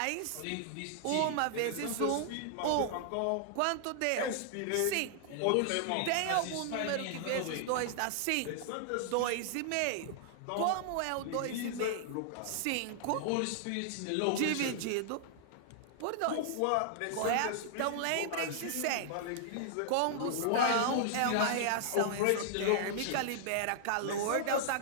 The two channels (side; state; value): both; different; correlation -0.01